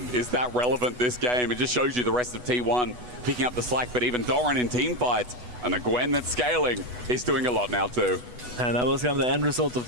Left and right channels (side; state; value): left; late; 8.1 ms